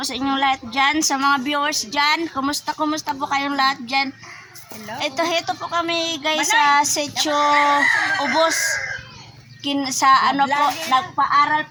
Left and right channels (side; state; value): both; identical; correlation 1.00